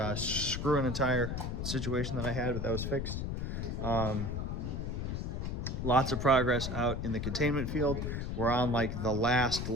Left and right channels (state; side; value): noise; left; rumble, 3 dB below the sound